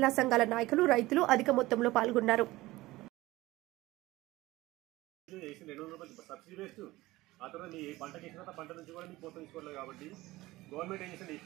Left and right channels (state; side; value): quieter; left; 18.7 dB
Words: సంఘాల నాయకులు, రైతులు అధిక మొత్తంలో పాల్గొన్నారు.